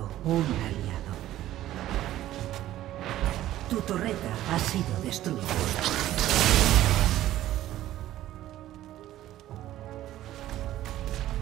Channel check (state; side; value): quieter; left; 13.9 dB